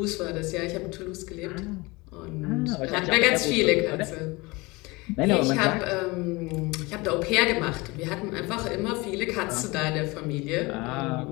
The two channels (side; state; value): right; quieter; 23.9 dB